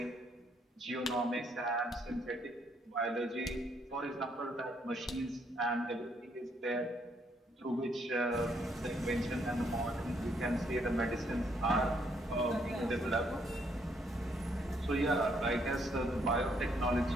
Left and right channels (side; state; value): both; normal; correlation 0.71